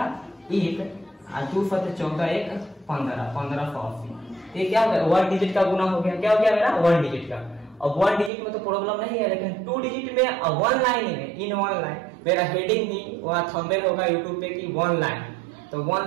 1, 2 7 14 1 15 1580। ये क्या हो गया, 1 डिजिट का गुना हो गया। क्या हो गया मेरा, 1 डिजिट का। अब 1 डिजिट में तो प्रॉब्लम नहीं है, लेकिन 2 डिजिट में 1 लाइन में, इन 1 लाइन मेरा हेडिंग ही वहाँ थंबनेल होगा यूट्यूब पे की 1 लाइन। तो 1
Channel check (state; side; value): drops out; left; at 8.3 s